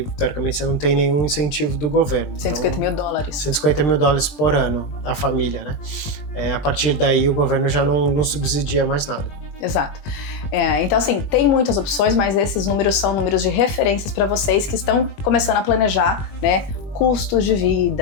teoricamente, você não tem nenhum incentivo do governo. 150 mil dólares. 150 mil dólares por ano, a família, né? A partir daí, o governo já não subsidia mais nada. Exato. Então, assim, tem muitas opções, mas esses números são números de referências para vocês que estão começando a planejar, né, custos de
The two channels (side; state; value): right; late; 21 ms